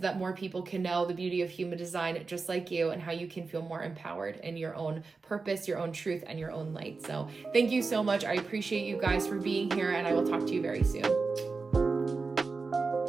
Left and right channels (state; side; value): quieter; left; 4.3 dB